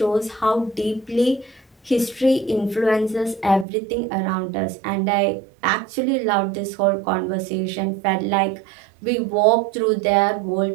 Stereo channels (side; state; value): left; drops out; at 3.7 s